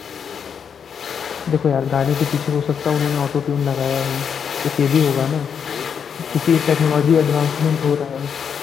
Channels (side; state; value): right; quieter; 7.2 dB